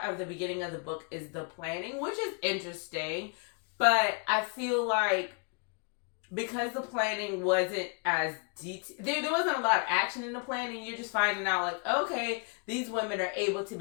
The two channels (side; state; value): right; quieter; 35.6 dB